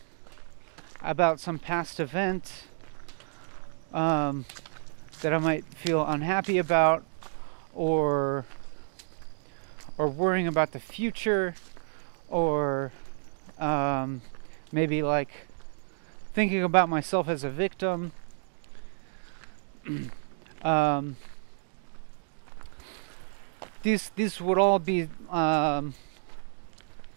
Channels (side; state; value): left; silent; digital silence